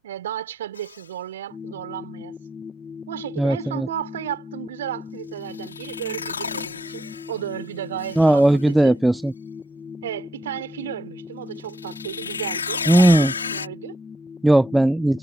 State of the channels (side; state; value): both; normal; correlation 0.79